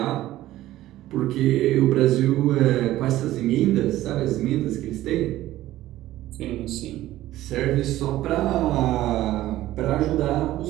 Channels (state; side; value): quieter; left; 15.0 dB